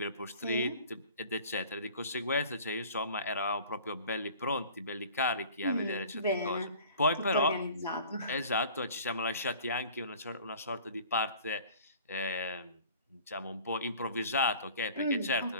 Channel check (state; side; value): inverted; both; correlation -0.46